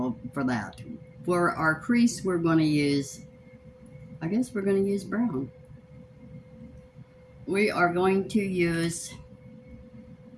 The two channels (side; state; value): both; identical; correlation 1.00